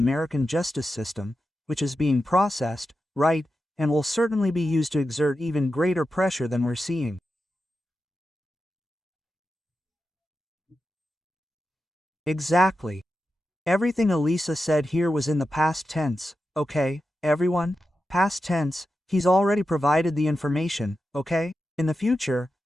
justice system, which is being processed, right, and will certainly be used to exert even greater pressure than we're seeing. Exactly. Everything Elisa said here was in the past tense, okay, everyone? Past tense, he's already provided the information, okay? In the future,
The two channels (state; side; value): normal; both; correlation 0.90